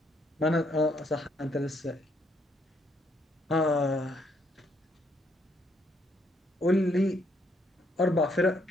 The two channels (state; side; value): normal; both; correlation 0.71